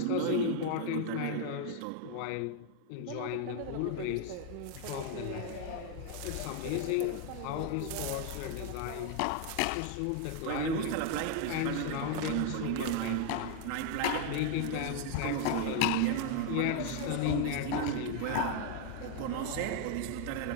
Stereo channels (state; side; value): different; both; correlation 0.00